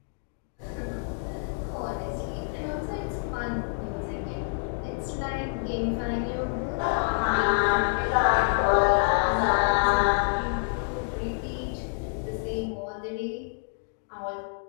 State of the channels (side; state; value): right; silent; digital silence